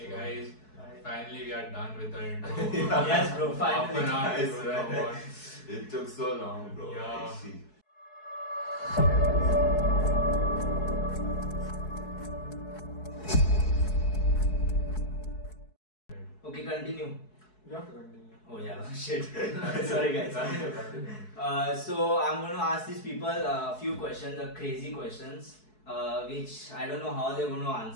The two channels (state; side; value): late; right; 4.7 ms